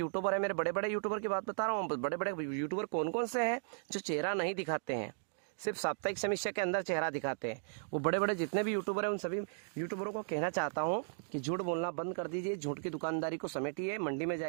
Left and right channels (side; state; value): left; silent; digital silence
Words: है, मेरे बड़े बड़े यूट्यूबर की बात बता रहा हूँ, बड़े बड़े यूट्यूबर कौन कौन से हैं जो चेहरा नहीं दिखाते हैं, सिर्फ साप्ताहिक समीक्षा के अंदर चेहरा दिखाते हैं। वो बड़े बड़े जितने भी यूट्यूबर हैं उन सभी यूट्यूबरों को कहना चाहता हूँ कि झूठ बोलना बंद कर दीजिए, झूठ की दुकानदारी को समेटिए, मंडी में